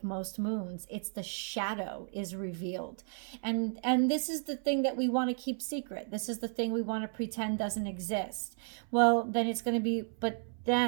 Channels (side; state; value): left; silent; 55 dB below the other